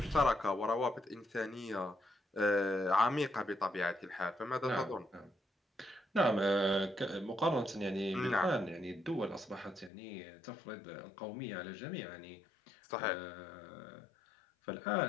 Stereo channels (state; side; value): drops out; right; at 9.9 s